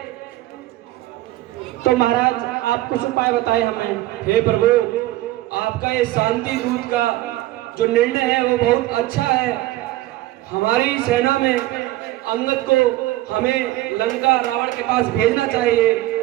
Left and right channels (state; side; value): quieter; left; 16.5 dB